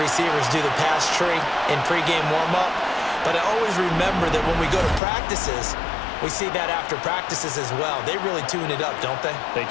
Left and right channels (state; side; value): drops out; right; at 5.0 s